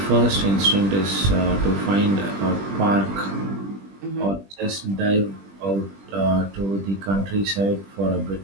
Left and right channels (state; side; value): late; left; 20 ms